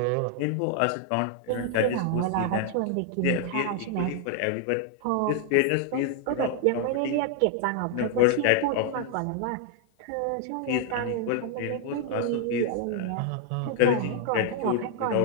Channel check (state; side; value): different; both; correlation 0.00